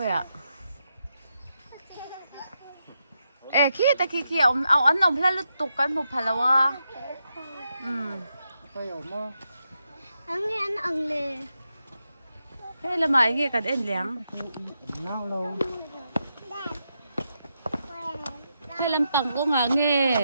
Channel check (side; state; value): both; inverted; correlation -0.84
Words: à ê khi ta khi ông ăn ông phải lúc tục cái một phải là wa anh nghe anh ăn lề thế là mày nghe cả đen lẻng thế làm bằng có ngả